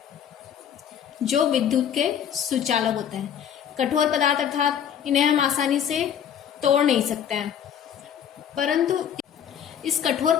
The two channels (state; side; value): quieter; right; 8.9 dB